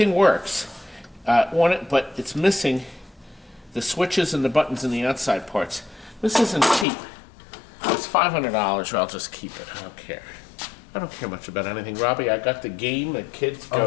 works on it, but it's missing the switches and the buttons in the outside parts. This isn't cheap. It's $500, or I'll just keep it. I don't care. I don't care much about anything. Robbie, I got the game that kids go.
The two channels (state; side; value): drops out; right; at 6.9 s